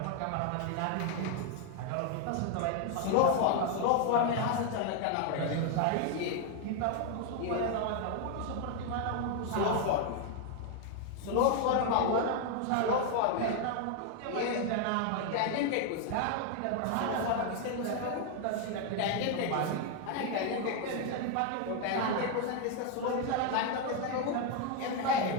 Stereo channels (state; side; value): different; both; correlation 0.00